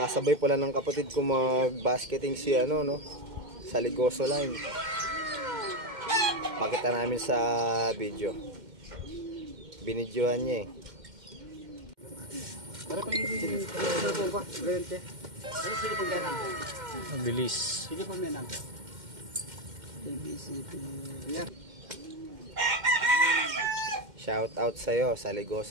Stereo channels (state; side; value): late; left; 2.1 ms